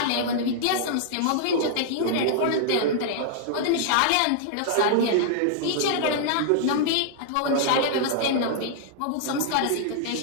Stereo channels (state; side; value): different; both; correlation -0.01